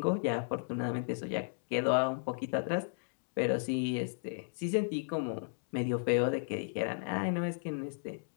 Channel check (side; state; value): right; silent; digital silence